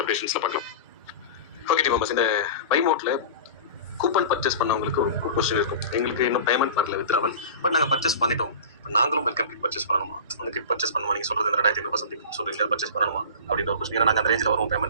அப்டேஷன்ஸ்ல பார்க்கலாம். ஓகே டீம் மெம்பர்ஸ், இந்த பைமோட்ல கூப்பன் பர்ச்சேஸ் பண்ணவங்களுக்கு ஒரு கொஸ்டின் இருக்கும். எங்களுக்கு இன்னும் பேமெண்ட் வரல வித்ராவல், பட் நாங்கள் பர்ச்சேஸ் பண்ணிட்டோம். இப்போ நாங்களும் வெல்கம் கிட் பர்ச்சேஸ் பண்ணணுமா, அந்த கிட் பர்ச்சேஸ் பண்ணுமா, நீங்கள் சொல்றது இந்த 2500 சம்திங் சொல்றீங்க, பர்ச்சேஸ் பண்ணணுமா அப்படின்ற ஒரு கொஸ்டின். ஏன்னா நாங்கள் அந்த ரேஞ்சில் வரும்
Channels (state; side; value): inverted; both; correlation -0.34